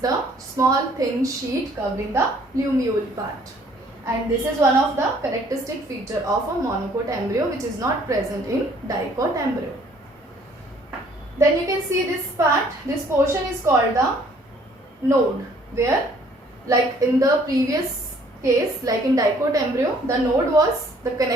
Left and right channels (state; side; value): normal; both; correlation 0.60